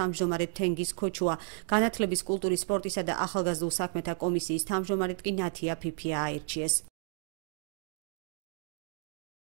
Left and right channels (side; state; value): left; silent; 56 dB below the other